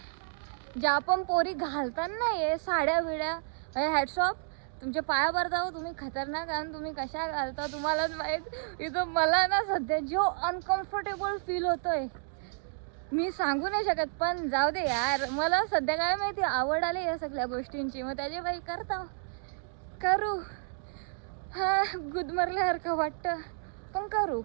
ज्या पण पोरी घालतात ना हे साड्या बिड्या, हॅट्स ऑफ तुमच्या पायावर जाऊ. तुम्ही खतरनाक, आणि तुम्ही कशा घालता तुम्हालाच माहीत. इथं मला ना सध्या जो अनकम्फर्टेबल फील होतोय मी सांगू नाही शकत. पण जाऊ दे यार, मला सध्या काय माहिती आवड आली या सगळ्या गोष्टींची. मग त्याचे भाई करता करू. हा गुदमरल्यासारखं वाटतं पण करू.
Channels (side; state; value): left; silent; digital silence